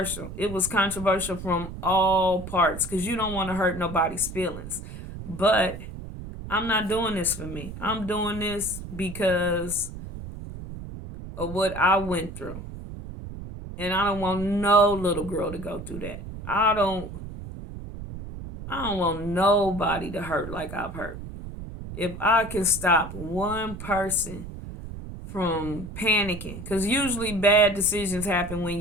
It was controversial from all parts, because you don't want to hurt nobody's feelings. But I'm not doing this for me. I'm doing this because of what I went through. And I don't want no little girl to go through that. I don't want nobody to hurt like I've hurt. If I can stop one person from panicking, because usually bad decisions happen when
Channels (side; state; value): right; noise; rumble, 10 dB below the sound